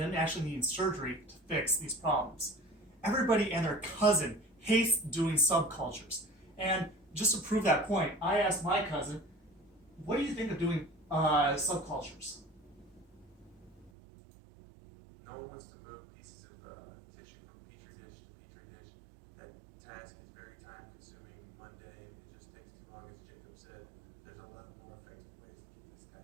actually needing surgery to fix these problems. Everybody and their cousin hates doing subcultures. And just to prove that point, I asked my cousin, what do you think of doing subcultures? No one wants to move pieces of tissue from petri dish to petri dish. That task is very time consuming, mundane, it just takes too long. As Jacob said, there's a lot more effective ways to get this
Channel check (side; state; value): left; drops out; at 13.9 s